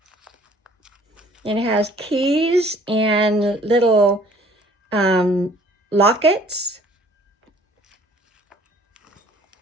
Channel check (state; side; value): normal; both; correlation 0.56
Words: It has keys and little lockets.